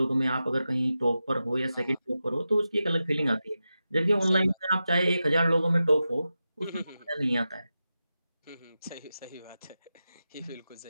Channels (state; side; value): inverted; both; correlation -0.92